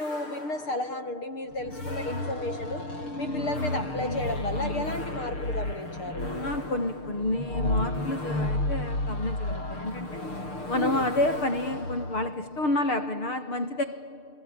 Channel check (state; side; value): late; right; 6.6 ms